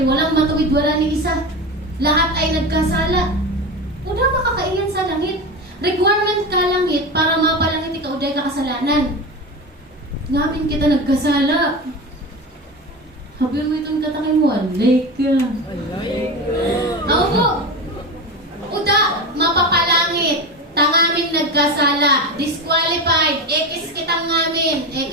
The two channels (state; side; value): normal; both; correlation 0.24